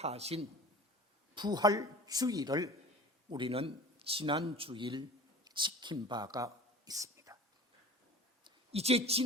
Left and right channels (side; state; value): both; normal; correlation 0.40